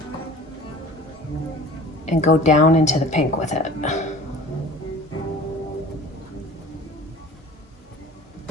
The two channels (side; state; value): both; normal; correlation 0.43